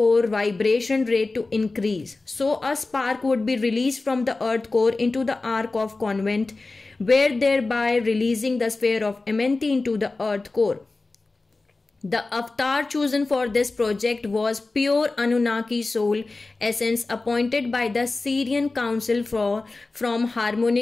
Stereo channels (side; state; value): right; quieter; 3.4 dB